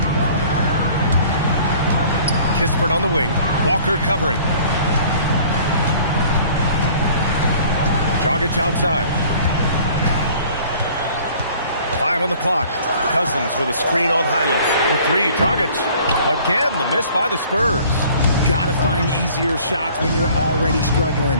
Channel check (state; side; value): inverted; both; correlation -0.52